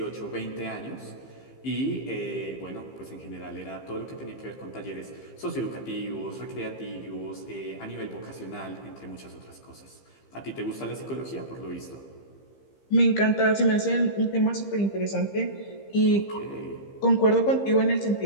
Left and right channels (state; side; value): late; right; 15 ms